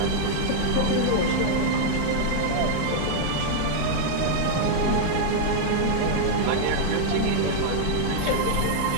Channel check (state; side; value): different; both; correlation -0.01